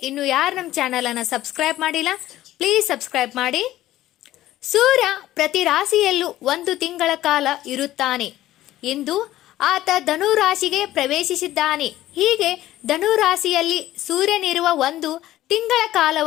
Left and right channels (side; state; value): right; quieter; 14.6 dB